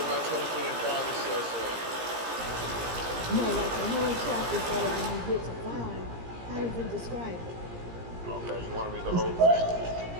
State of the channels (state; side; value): late; left; 17 ms